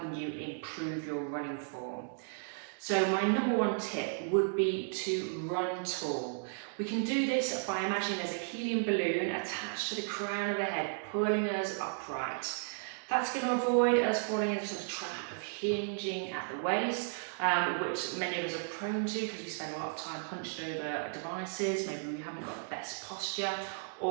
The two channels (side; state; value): left; silent; digital silence